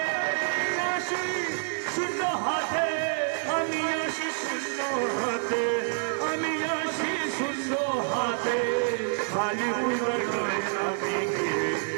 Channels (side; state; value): left; silent; 60 dB below the other